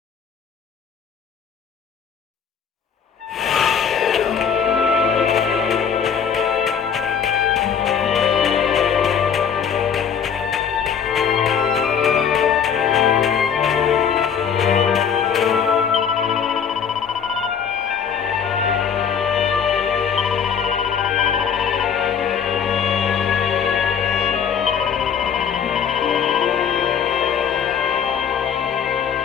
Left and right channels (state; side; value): quieter; right; 7.4 dB